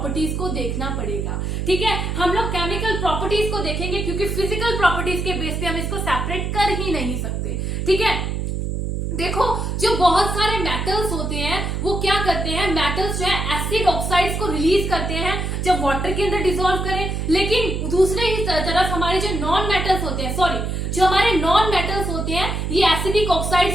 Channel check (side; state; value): right; noise; hum, 2 dB below the sound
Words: को देखना पड़ेगा। ठीक है, हम लोग केमिकल प्रॉपर्टीज को देखेंगे, क्योंकि फिजिकल प्रॉपर्टीज के बेस पे हम इसको सेपरेट कर ही नहीं सकते। ठीक है, देखो जो बहुत सारे मेटल्स होते हैं वो क्या करते हैं, मेटल्स जो है एसिड ऑक्साइड्स को रिलीज करते हैं जब वाटर के अंदर डिसॉल्व करें। लेकिन दूसरे ही तरफ हमारे जो नॉन मेटल्स होते हैं, जो हमारे नॉन मेटल्स होते हैं, ये एसिडिक